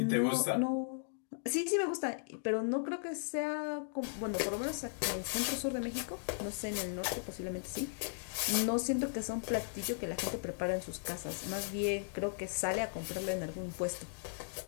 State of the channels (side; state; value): right; silent; digital silence